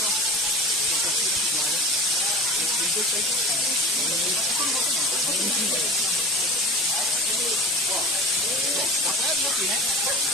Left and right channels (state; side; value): normal; both; correlation 0.36